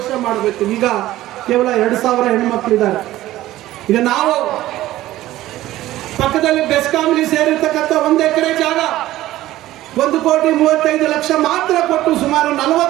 ಮಾಡಬೇಕು. ಈಗ ಕೇವಲ 2,000 ಹೆಣ್ಮಕ್ಳಿದ್ದಾರೆ. ಈಗ ನಾವು ಪಕ್ಕದಲ್ಲಿ ಬೆಸ್ಕಾಂಲಿ ಸೇರಿರ್ತಕ್ಕಂಥ 1 ಎಕರೆ ಜಾಗ 1,35,00,000 ಮಾತ್ರ ಕೊಟ್ಟು ಸುಮಾರು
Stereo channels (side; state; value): left; quieter; 15.4 dB